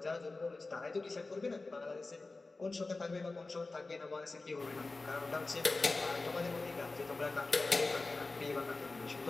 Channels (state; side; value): quieter; right; 3.5 dB